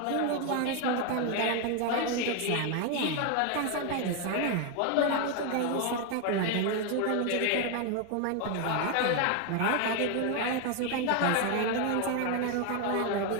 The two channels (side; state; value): both; different; correlation 0.01